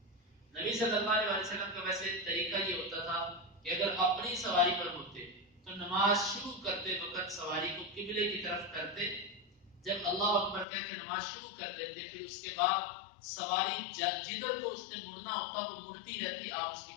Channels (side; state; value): right; drops out; at 10.7 s